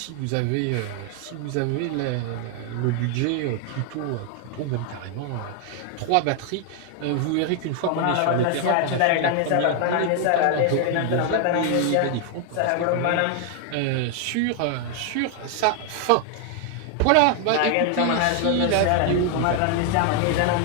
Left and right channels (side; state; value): both; different; correlation 0.00